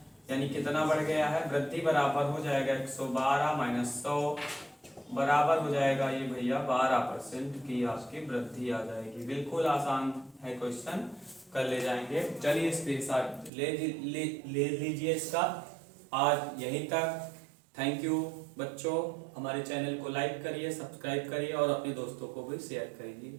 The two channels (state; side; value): drops out; left; at 13.5 s